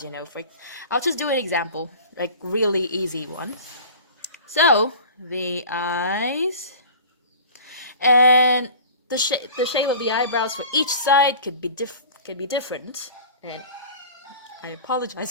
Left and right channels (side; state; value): both; inverted; correlation -0.40